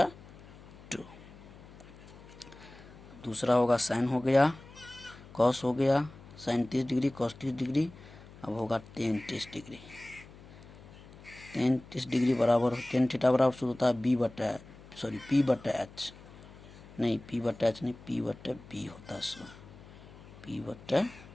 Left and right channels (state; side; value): noise; left; hum, 19 dB below the sound